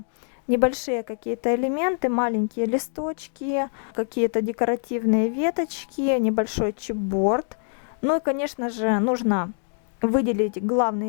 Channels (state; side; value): silent; right; 57 dB below the other